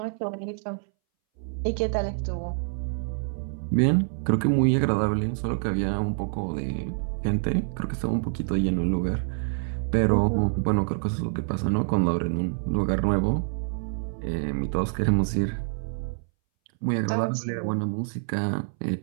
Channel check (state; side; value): silent; left; 60 dB below the other